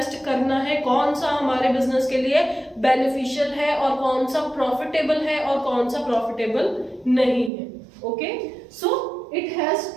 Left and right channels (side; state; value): left; drops out; at 7.5 s